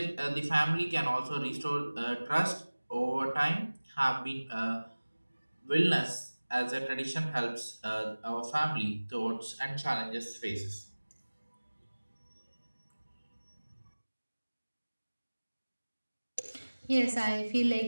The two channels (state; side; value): inverted; both; correlation -1.00